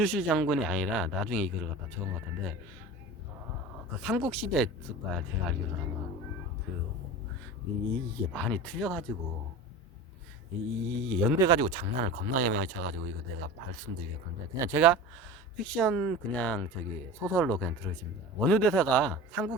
장군이 아니라 나중에 이거를 갖다 적은 것 같은데, 그 삼국시대 였을 거야, 제가 알기로는. 그 이게 많이 틀려가지고, 이 연대 가지고 장난을 겁나게 많이 쳐가지고 이거 내가 말씀드리겠는데, 그냥 제가 픽션 그냥 저기 소설로 그냥 들으십니다. 원효대사가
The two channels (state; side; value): normal; both; correlation 0.33